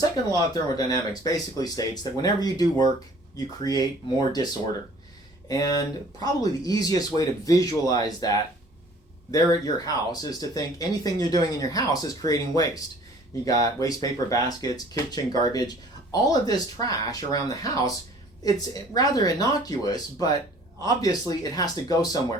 law of thermodynamics basically states that whenever you do work, you create more disorder. And probably the easiest way to visualize that there at your house is to think anything you're doing in your house is creating waste. You got waste paper baskets, kitchen garbage, all of this trash around the house. It's rather innocuous, but obviously it has to go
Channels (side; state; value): both; normal; correlation 0.52